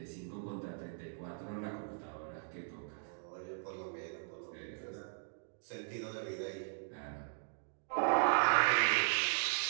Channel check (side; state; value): left; silent; digital silence